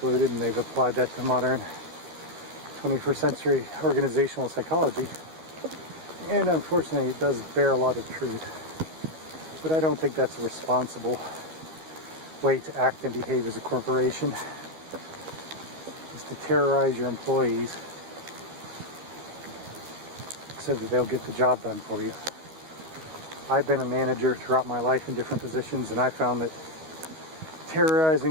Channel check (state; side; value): late; left; 13 ms